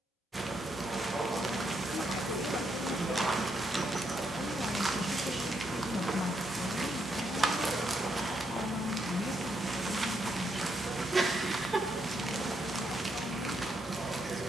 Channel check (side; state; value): both; normal; correlation 0.78